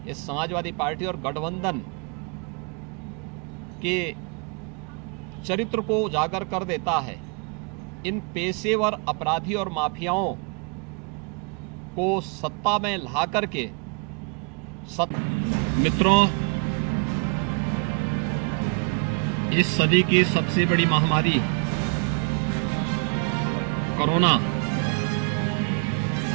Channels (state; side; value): quieter; left; 37.8 dB